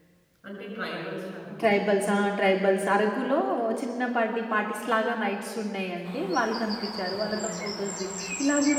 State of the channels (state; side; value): identical; both; correlation 1.00